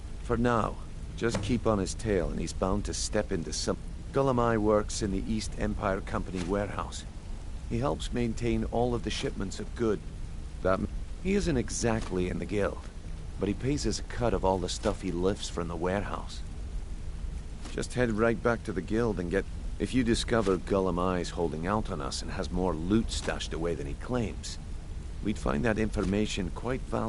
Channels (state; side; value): identical; both; correlation 1.00